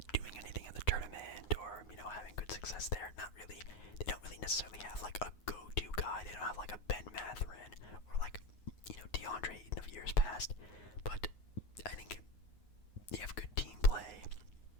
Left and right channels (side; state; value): right; late; 9.6 ms